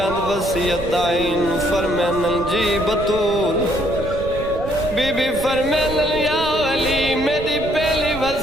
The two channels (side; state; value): right; noise; rumble, 11 dB below the sound